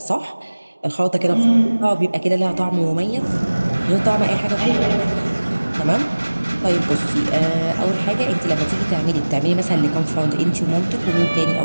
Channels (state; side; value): inverted; both; correlation -1.00